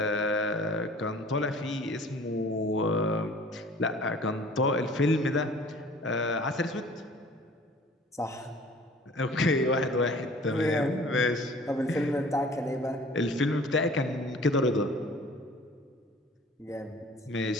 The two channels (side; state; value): both; normal; correlation 0.49